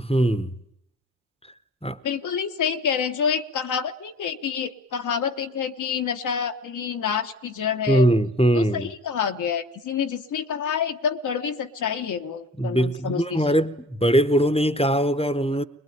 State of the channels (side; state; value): both; normal; correlation 0.45